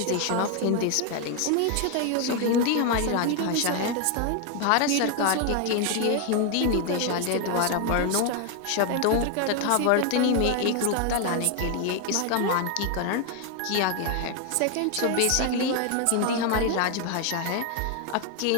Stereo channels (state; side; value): different; both; correlation 0.01